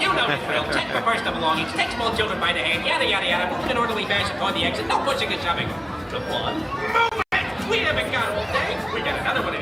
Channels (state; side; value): identical; both; correlation 1.00